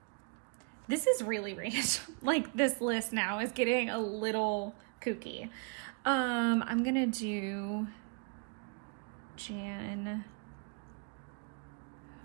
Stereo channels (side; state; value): left; quieter; 38.5 dB